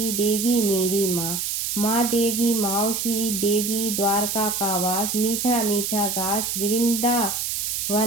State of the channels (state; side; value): noise; right; hiss, 1 dB below the sound